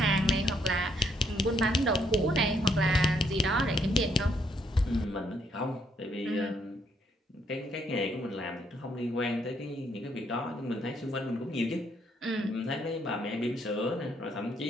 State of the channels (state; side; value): normal; both; correlation 0.71